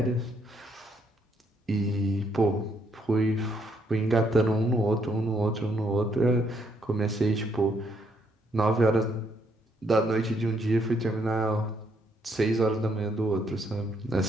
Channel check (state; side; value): normal; both; correlation 0.72